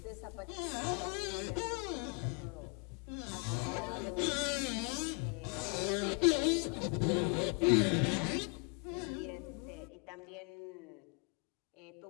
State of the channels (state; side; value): quieter; right; 35.3 dB